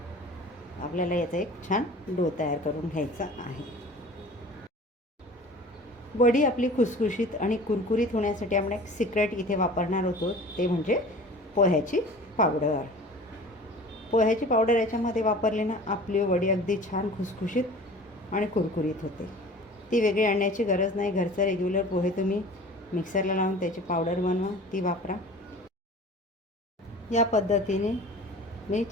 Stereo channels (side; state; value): both; normal; correlation 0.42